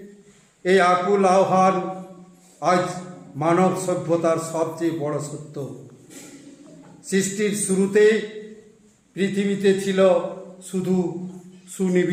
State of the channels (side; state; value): both; identical; correlation 1.00